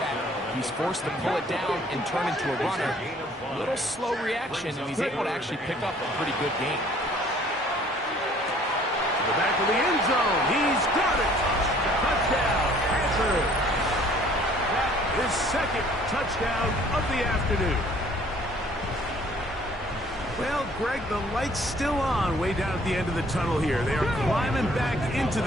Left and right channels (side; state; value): both; normal; correlation 0.57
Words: He's forced to pull it down and turn into a runner. A little slow reaction, and he's able to actually pick up a pretty good game. To the back of the end zone. He's got it. Touchdown, Panthers. That is second touchdown of the afternoon. Well, Greg, the light's still on way down at the end of the tunnel here. They are climbing back into